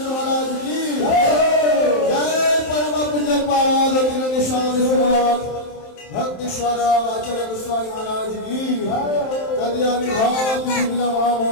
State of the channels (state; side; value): late; right; 27 ms